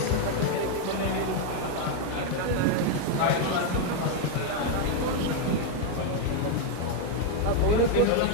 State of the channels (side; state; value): both; different; correlation 0.00